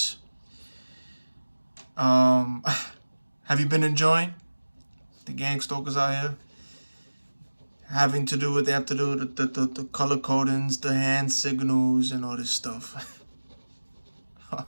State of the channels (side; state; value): both; inverted; correlation -1.00